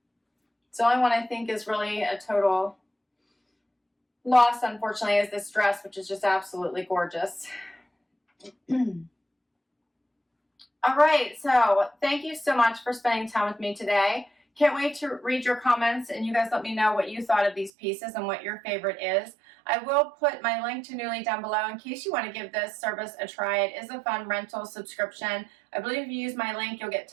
It's the only one I think is really a total loss, unfortunately, is this dress, which is just absolutely gorgeous. All right, so thank you so much for spending time with me today. Can't wait to read your comments, and you guys let me know what you thought of these pieces and what your favorite is. I will put my link to Nuuly down below in case you want to give this service a try. It is a fun rental subscription. I believe if you use my link, you'll get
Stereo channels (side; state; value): left; drops out; at 17.7 s